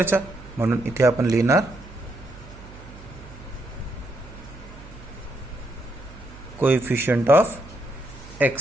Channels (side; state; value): right; noise; hum, 18 dB below the sound